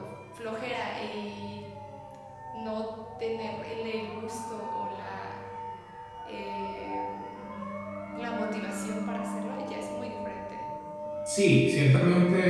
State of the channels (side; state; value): both; identical; correlation 1.00